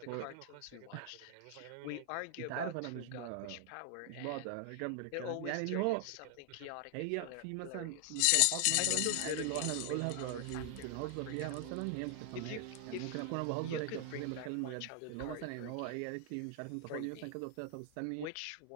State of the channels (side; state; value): both; different; correlation 0.00